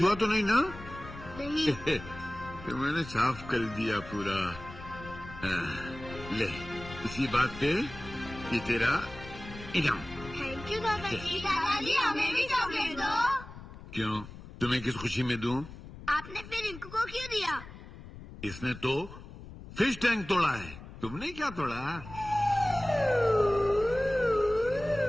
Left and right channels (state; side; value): noise; left; rumble, 15 dB below the sound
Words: हुआ तो नहीं ना? नहीं। तो मैंने साफ कर दिया पूरा। ले, इसी बात पे ये तेरा इनाम। थैंक यू दादाजी। दादाजी, हमें भी चॉकलेट दो। क्यों, तुम्हें किस खुशी में दूं? आपने फिर रिंकू को क्यों दिया? इसने तो फिश टैंक तोड़ा है, तुमने क्या तोड़ा?